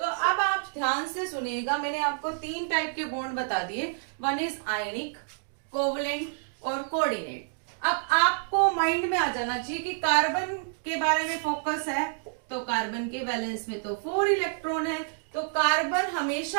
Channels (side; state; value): left; silent; digital silence